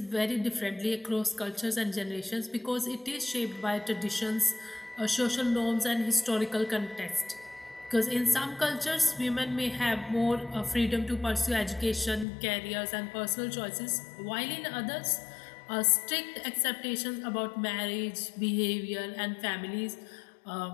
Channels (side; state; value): right; drops out; at 12.2 s